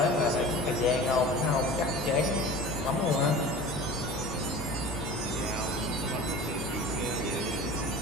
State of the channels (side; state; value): both; normal; correlation 0.38